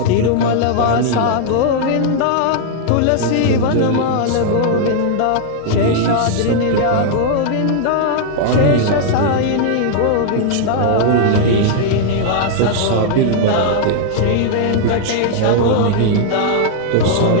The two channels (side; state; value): both; different; correlation -0.01